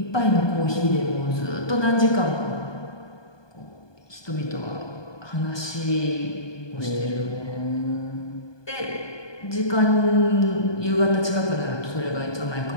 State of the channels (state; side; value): late; right; 1.2 ms